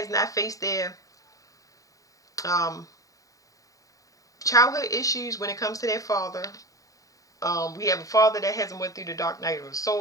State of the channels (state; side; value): late; right; 0.17 ms